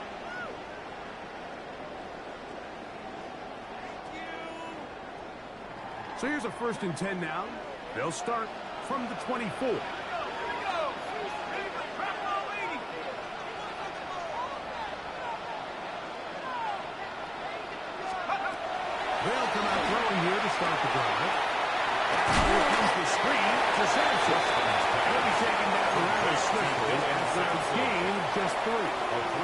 So here's a 1st and 10 now. They'll start from the 24. They'll come out throwing here to start the drive. Here comes the screen to Sanchez. He'll be taken down rather swiftly after a gain of just 3. A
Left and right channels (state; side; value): identical; both; correlation 1.00